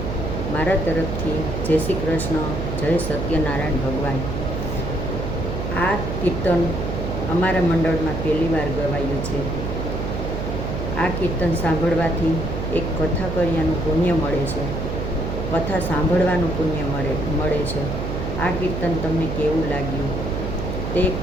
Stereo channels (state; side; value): noise; right; hum, 4 dB below the sound